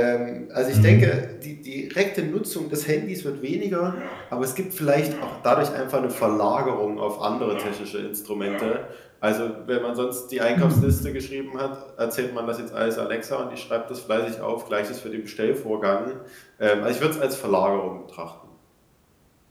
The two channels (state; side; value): identical; both; correlation 1.00